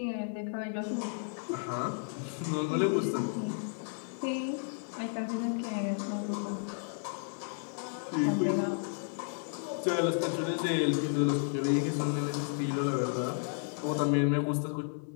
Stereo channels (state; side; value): silent; right; 56 dB below the other